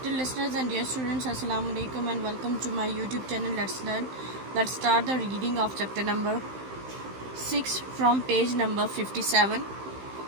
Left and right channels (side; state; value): left; late; 15 ms